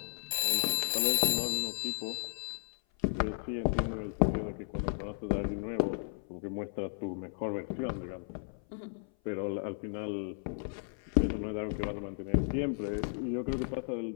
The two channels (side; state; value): right; silent; 55 dB below the other